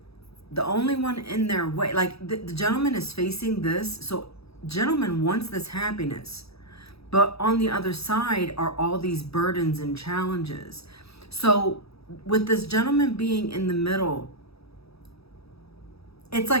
the only one in their way, like the gentleman is facing this, so gentleman wants this happiness, but on the other side are all these burdens and challenges. So with this gentleman being in the middle, it's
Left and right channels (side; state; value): right; late; 0.77 ms